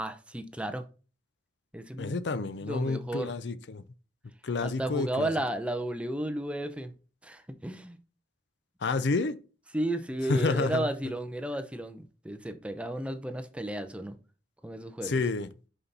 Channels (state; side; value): normal; both; correlation 0.62